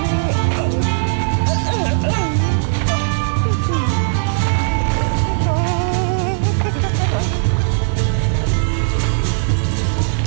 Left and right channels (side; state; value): left; silent; digital silence